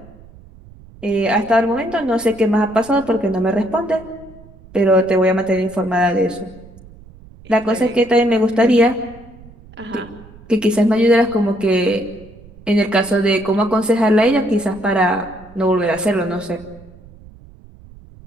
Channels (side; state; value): right; noise; rumble, 22 dB below the sound